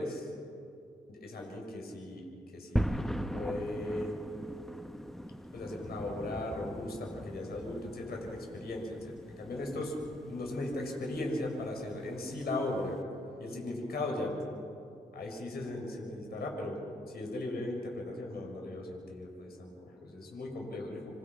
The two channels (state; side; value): normal; both; correlation 0.76